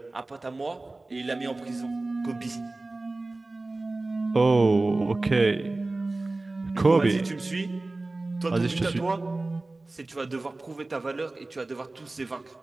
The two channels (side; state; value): left; quieter; 3.1 dB